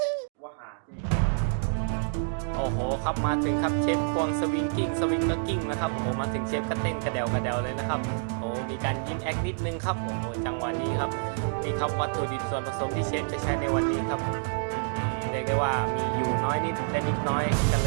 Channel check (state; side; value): silent; left; digital silence